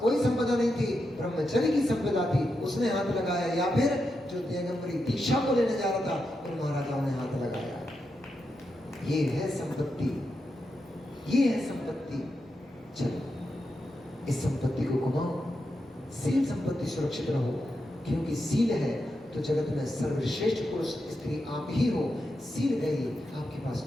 कोई संपदा नहीं थी, ब्रह्मचर्य की संपदा थी, उसने हाथ लगाया, या फिर जो दिगंबरी दीक्षा को लेने जा रहा था उन महाराजाओं ने हाथ लगाया। ये है संपत्ति, ये है संपत्ति। चलो इस संपत्ति को घुमाओ, सील संपत्ति सुरक्षित रहो, क्योंकि सील है तो जगत में सर्वश्रेष्ठ पुरुष स्त्री आप ही हो। सील गई, आपके पास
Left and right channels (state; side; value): normal; both; correlation 0.86